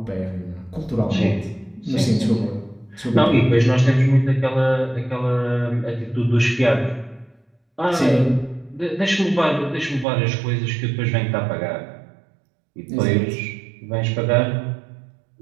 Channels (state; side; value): drops out; left; at 10.1 s